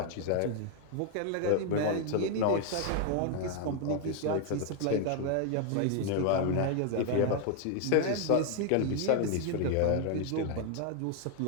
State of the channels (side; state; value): both; different; correlation 0.00